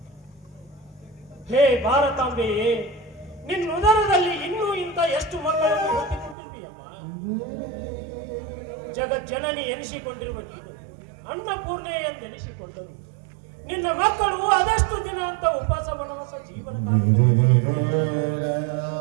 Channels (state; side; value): drops out; left; at 6.4 s